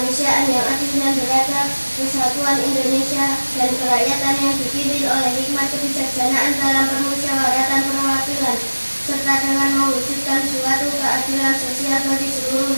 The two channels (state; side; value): inverted; both; correlation -1.00